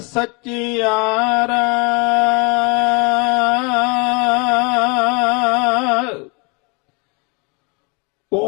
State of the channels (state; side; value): quieter; right; 31.3 dB